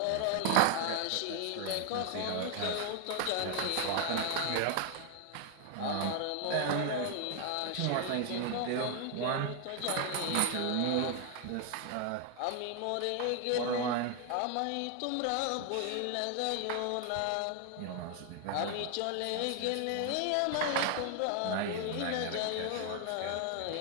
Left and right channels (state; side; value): different; both; correlation 0.01